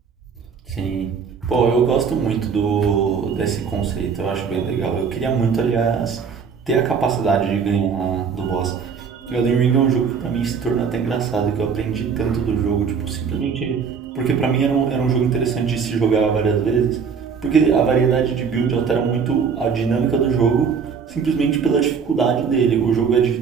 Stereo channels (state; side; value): quieter; left; 6.2 dB